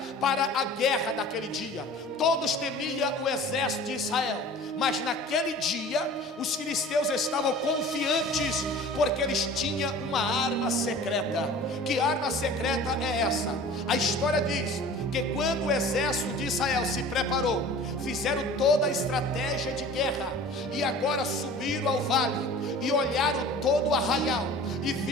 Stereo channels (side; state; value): both; normal; correlation 0.42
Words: para a guerra daquele dia. Todos temiam o exército de Israel, mas naquele dia os filisteus estavam confiantes, porque eles tinham uma arma secreta. Que arma secreta é essa? A história diz que quando o exército de Israel se preparou, fizeram toda a estratégia de guerra, e agora subiram ao vale e olharam todo o arraial e